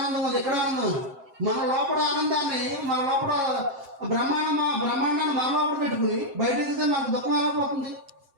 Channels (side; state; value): left; late; 7.7 ms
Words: ఉంది, ఎక్కడ ఆనందం ఉంది. మన లోపల ఆనందాన్ని, మన లోపల బ్రహ్మాండాన్ని మన లోపల పెట్టుకుని బయట ఎదిగితే మనకు దుఃఖం ఎలా పోతుంది?